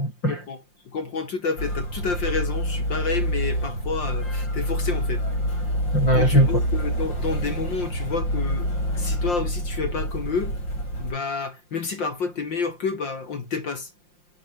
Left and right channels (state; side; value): late; right; 5.7 ms